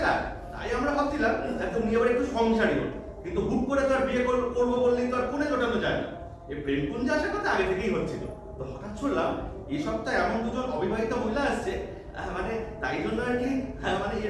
তাই আমরা ভাবছিলাম একদম নিয়ে আবার একটু সংসারী হতো কিন্তু হুট করে তো আর বিয়ে করবো বললেই তো আর কোণে জোটানো যায় না এই প্রেমপুঞ্জে আসার কথা আগে থেকেই হচ্ছিল তো হঠাৎ শুনলাম এই সপ্তাহে এমন দুজন অবিবাহিত মহিলা আসছে মানে তাই জন্য আর কি মানে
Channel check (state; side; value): identical; both; correlation 1.00